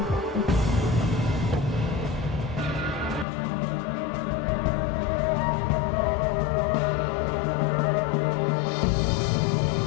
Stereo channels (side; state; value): right; drops out; at 3.2 s